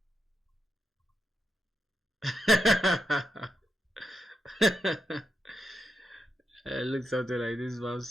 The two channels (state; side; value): normal; both; correlation 0.86